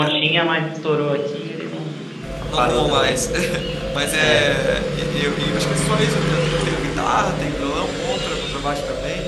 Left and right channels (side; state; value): both; identical; correlation 1.00